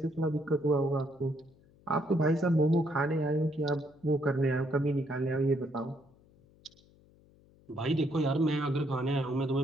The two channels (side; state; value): left; noise; hum, 29 dB below the sound